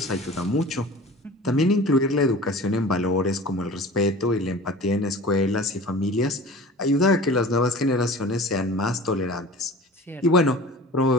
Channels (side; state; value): both; normal; correlation 0.40